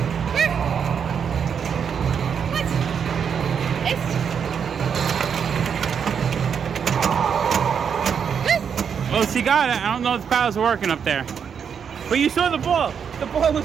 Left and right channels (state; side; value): quieter; left; 7.2 dB